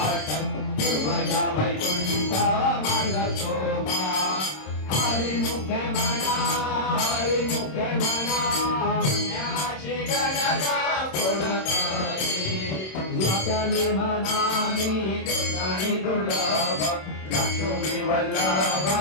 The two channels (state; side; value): late; right; 26 ms